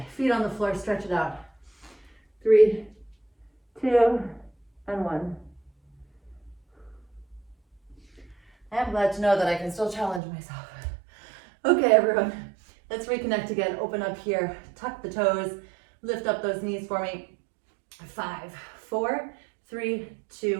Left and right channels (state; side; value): drops out; left; at 10.2 s